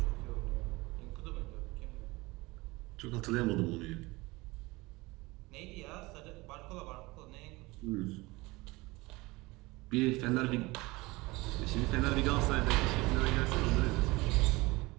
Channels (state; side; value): quieter; left; 22.4 dB